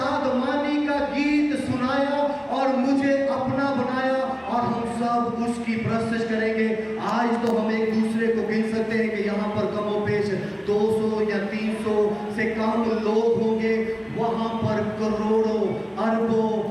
کا گیت سنایا اور مجھے اپنا بنایا، اور ہم سب اس کی پرستش کریں گے۔ آج تو ہم ایک دوسرے کو گن سکتے ہیں کہ یہاں پر کم و بیش 200 یا 300 سے کم لوگ ہوں گے، وہاں پر کروڑوں اربوں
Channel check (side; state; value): both; identical; correlation 1.00